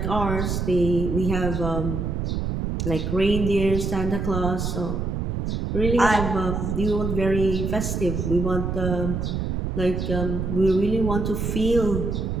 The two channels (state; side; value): noise; right; rumble, 2 dB below the sound